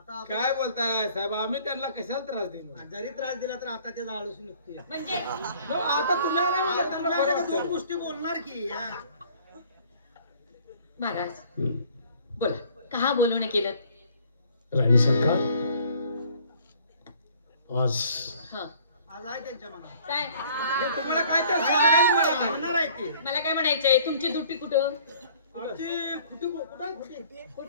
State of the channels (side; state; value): both; inverted; correlation -0.55